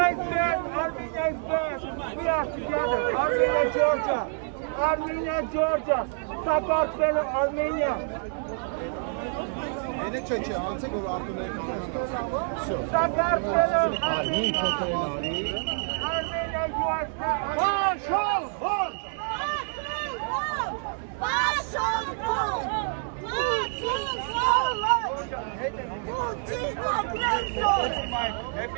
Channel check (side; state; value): left; silent; 60 dB below the other